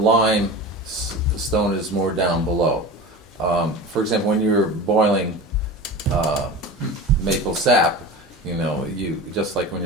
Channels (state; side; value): normal; both; correlation 0.31